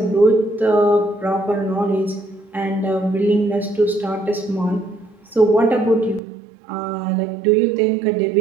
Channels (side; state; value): left; drops out; at 6.2 s